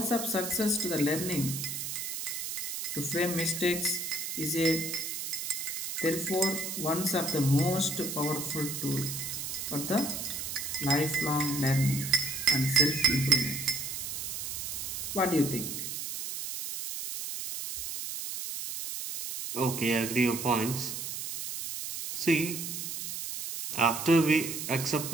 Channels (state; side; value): noise; right; hiss, 5 dB below the sound